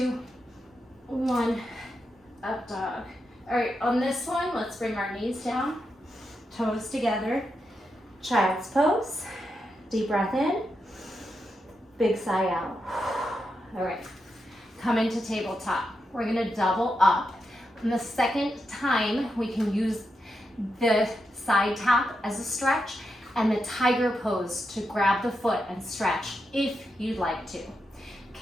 1, up dog. All right, on this one, let's bring our knees down, toes together, child's pose, deep breath in, big sigh out. All right, come into tabletop. We're gonna double up. And the second time, we can use the side tap as a stretch and the tiger pose to grab the foot and stretch if you'd like to.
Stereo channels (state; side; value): normal; both; correlation 0.86